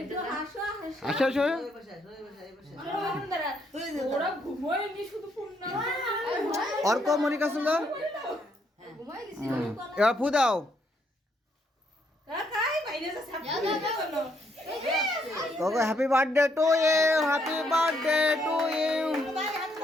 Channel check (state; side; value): normal; both; correlation 0.73